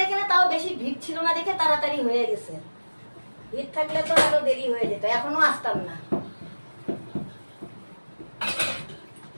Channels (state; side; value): inverted; both; correlation -1.00